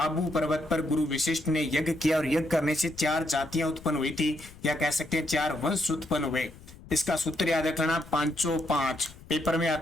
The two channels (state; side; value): noise; left; rumble, 20 dB below the sound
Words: पर्वत पर गुरु विशिष्ट ने यज्ञ किया और यज्ञ करने से 4 जातियां उत्पन्न हुई थी, या कह सकते हैं 4 वंश उत्पन्न हुए। इसका सूत्र याद रखना 505। पेपर में